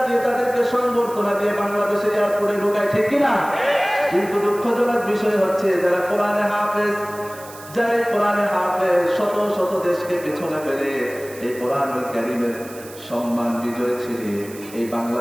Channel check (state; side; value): noise; right; hiss, 18 dB below the sound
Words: দিয়ে, তাদেরকে সংবর্ধনা দিয়ে বাংলাদেশে এয়ারপোর্টে ঢোকায়, ঠিক কিনা? কিন্তু দুঃখজনক বিষয় হচ্ছে, যারা কোরআনে হাফেজ, যারা কোরআনে হাফেজ, শত শত দেশকে পেছনে ফেলে এই কোরআনুল কারীমের সম্মান বিজয় ছিনিয়ে এই